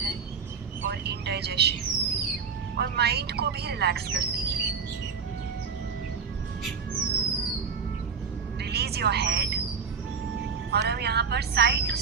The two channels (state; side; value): quieter; left; 5.9 dB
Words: और इंडाइजेशन और माइंड को भी रिलैक्स करती है। रिलीज योर हेड और हम यहाँ पर साइड टू